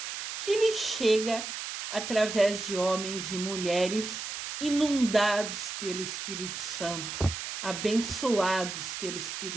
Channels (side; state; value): right; noise; hiss, 6 dB below the sound